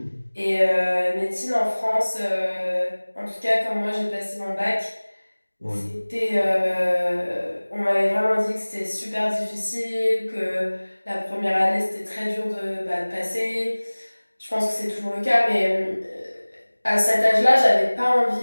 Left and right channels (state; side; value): inverted; both; correlation -1.00